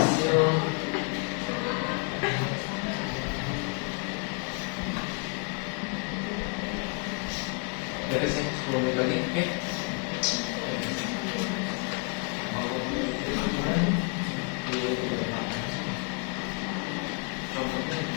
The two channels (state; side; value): quieter; right; 35.1 dB